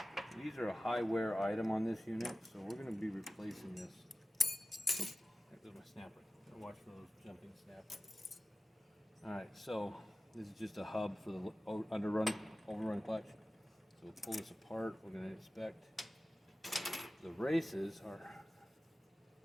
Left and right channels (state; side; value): normal; both; correlation 0.95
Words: These are a high wear item on this unit, so we're going to be replacing this. Oops, there goes my snapper. Watch for those jumping snappers. Alright, so this is just a hub for the overrun clutch. So we'll pull this apart. We're going to inspect the races. Our